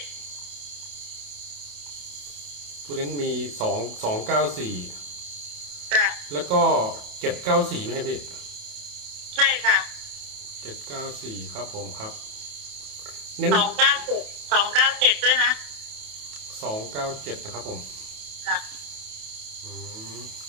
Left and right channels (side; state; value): left; late; 28 ms